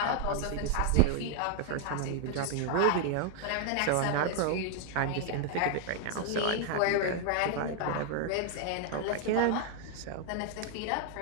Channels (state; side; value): different; both; correlation 0.00